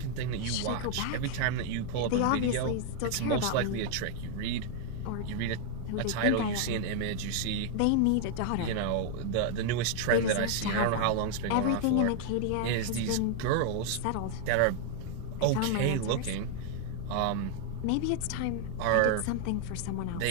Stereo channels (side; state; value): both; different; correlation 0.00